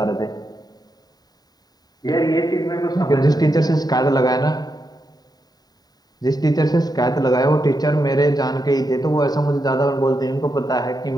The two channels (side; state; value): right; late; 0.19 ms